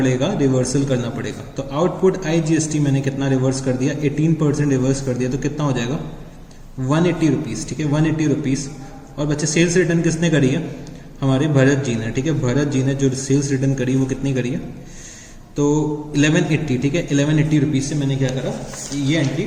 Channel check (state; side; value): identical; both; correlation 1.00